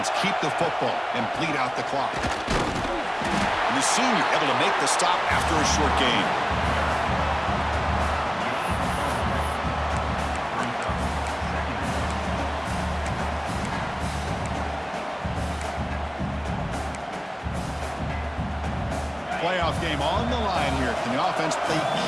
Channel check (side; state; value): both; identical; correlation 1.00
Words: keep the football and bleed out the clock? And the senior able to make the stop after a short gain. Playoff game on the line here. Can the offense play